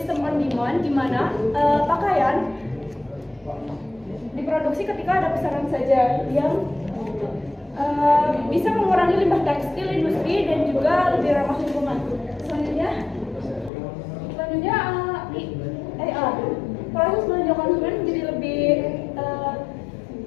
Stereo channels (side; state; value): right; drops out; at 13.7 s